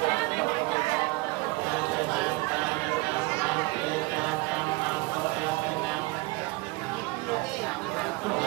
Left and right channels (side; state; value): left; quieter; 23.5 dB